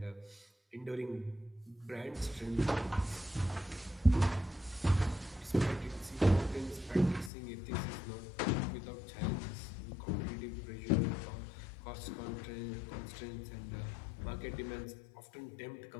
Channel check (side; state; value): right; drops out; at 7.3 s